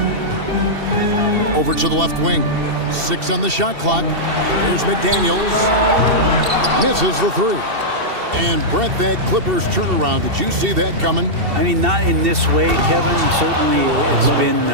Over to the left wing. 6 on the shot clock. Here's McDaniels. Misses the 3. And Brett, that Clippers turnaround, did you see that coming? I mean, not in this way, Kevin. Certainly it's been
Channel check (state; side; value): late; left; 2.7 ms